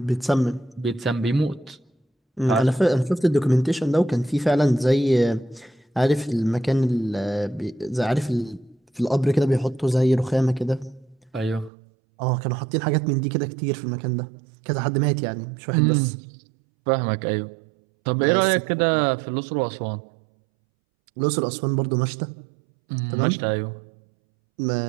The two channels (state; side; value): drops out; left; at 11.7 s